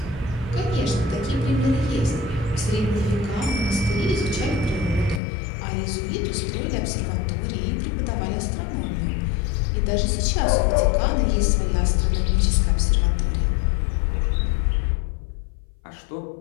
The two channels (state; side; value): drops out; right; at 5.2 s